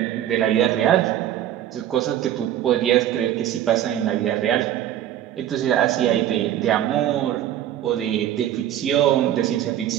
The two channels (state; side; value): quieter; left; 11.5 dB